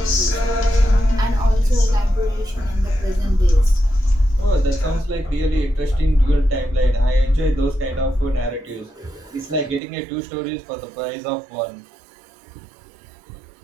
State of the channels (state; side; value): drops out; left; at 9.8 s